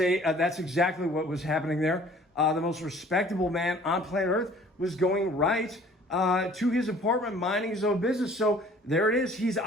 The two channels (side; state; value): both; normal; correlation 0.52